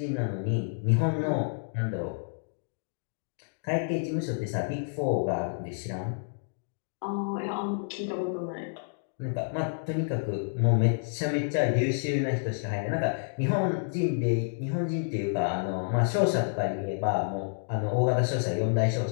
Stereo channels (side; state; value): right; silent; digital silence